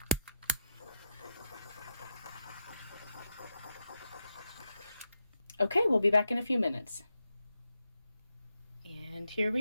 Okay, we'll be back in a few minutes. And here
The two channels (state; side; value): inverted; both; correlation -0.84